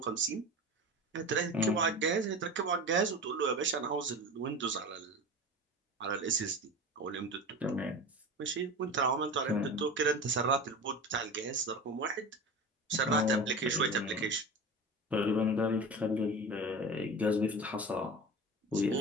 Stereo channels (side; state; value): both; normal; correlation 0.31